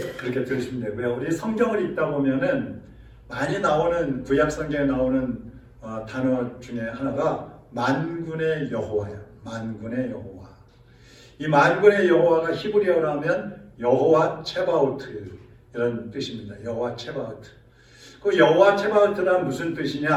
들으시면 되고요. 우리 성경을 읽다 보면은 많이 나오는, 구약 성경에 나오는 단어 중에 하나가 만군의 여호와야. 만군의 여호와. 이 만군의 여호와가 히브리어로 하면 여호와 체바오트 이런 뜻입니다. 여호와 체바오트. 그 여호와 체바오트란 무슨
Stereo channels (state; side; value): identical; both; correlation 1.00